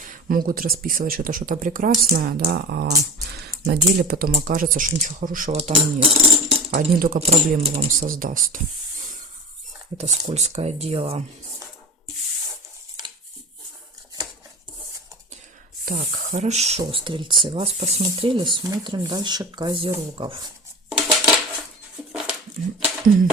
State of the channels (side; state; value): both; normal; correlation 0.32